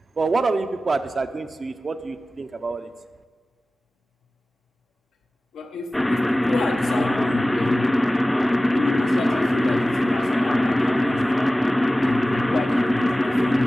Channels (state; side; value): normal; both; correlation 0.96